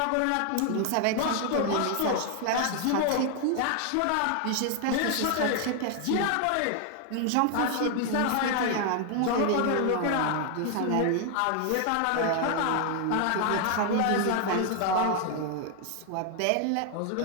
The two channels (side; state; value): both; different; correlation 0.00